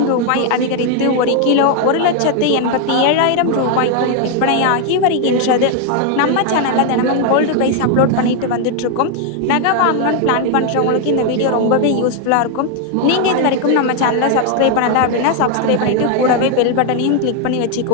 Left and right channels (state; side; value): different; both; correlation 0.01